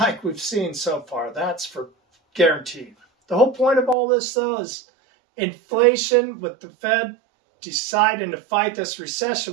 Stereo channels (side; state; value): left; drops out; at 4.0 s